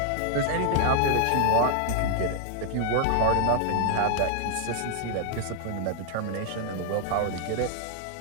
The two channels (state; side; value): different; both; correlation 0.00